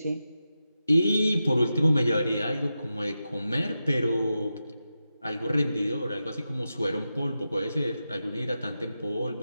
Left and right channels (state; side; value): inverted; both; correlation -0.90